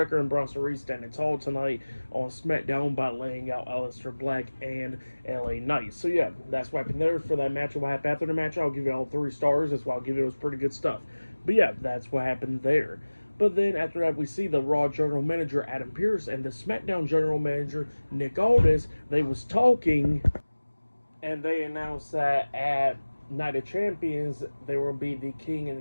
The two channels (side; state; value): both; inverted; correlation -1.00